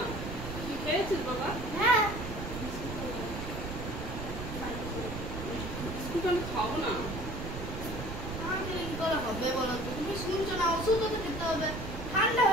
তুই খেয়েছিস বাবা? হ্যাঁ, বিস্কুট আমি খাবো না। না খেলে কি করে হবে বলো তো? তুমি শুনছো না, ওষুধও তো খেতে হবে। ঠান্ডা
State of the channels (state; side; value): noise; right; rumble, 6 dB below the sound